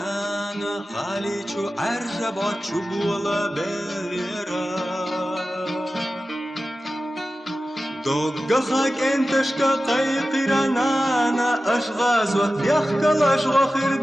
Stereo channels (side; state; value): both; normal; correlation 0.94